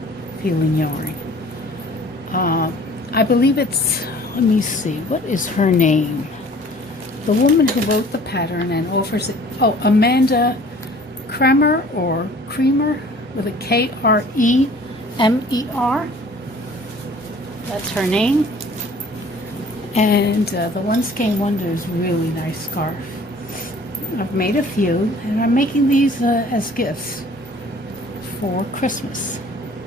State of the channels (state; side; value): normal; both; correlation 0.51